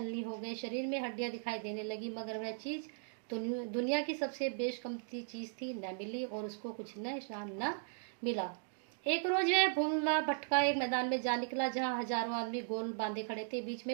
हो गए, शरीर में हड्डियां दिखाई देने लगी, मगर वह चीज दुनिया की सबसे बेशकीमती चीज थी, न मिली और उसको कुछ निशान न मिला। एक रोज वह भूला भटका एक मैदान में जा निकला जहां हजारों आदमी गोल बांधे खड़े थे। बीच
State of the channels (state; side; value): silent; left; digital silence